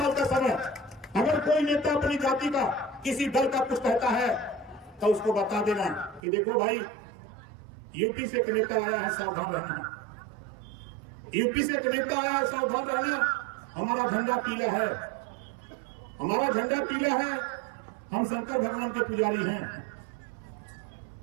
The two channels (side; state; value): left; drops out; at 6.2 s